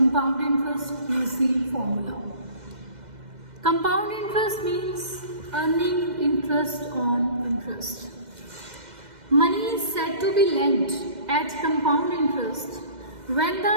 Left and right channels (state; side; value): late; left; 2.1 ms